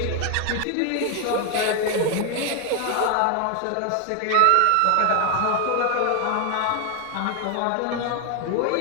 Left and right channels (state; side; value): different; both; correlation 0.01